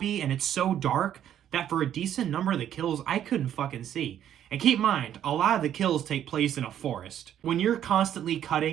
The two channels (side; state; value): left; quieter; 10.5 dB